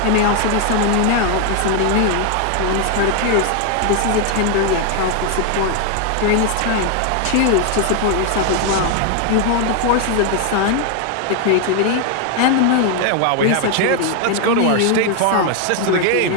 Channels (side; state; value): both; different; correlation 0.01